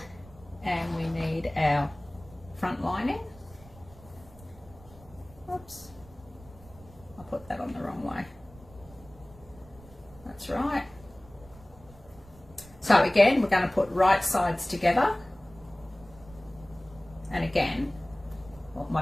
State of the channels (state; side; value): noise; right; rumble, 22 dB below the sound